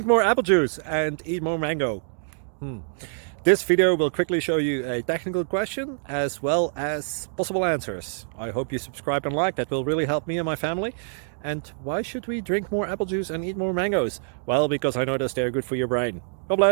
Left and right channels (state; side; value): silent; left; digital silence